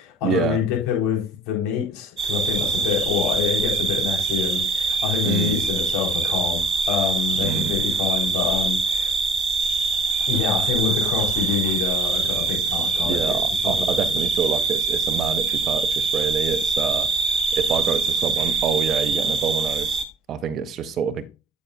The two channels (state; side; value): normal; both; correlation 0.50